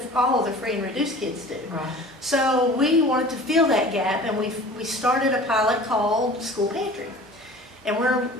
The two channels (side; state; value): both; normal; correlation 0.43